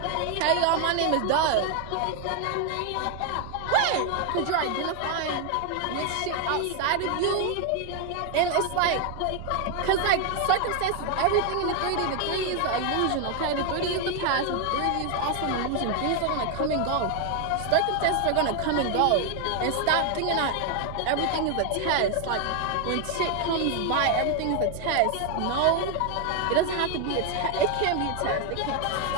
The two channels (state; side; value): different; both; correlation 0.01